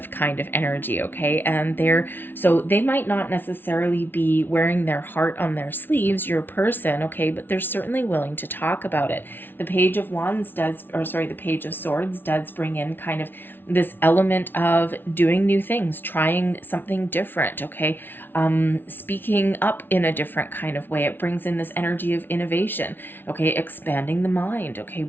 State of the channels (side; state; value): right; late; 0.10 ms